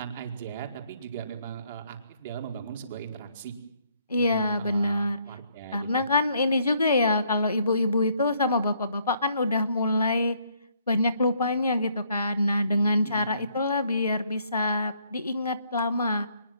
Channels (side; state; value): both; inverted; correlation -0.68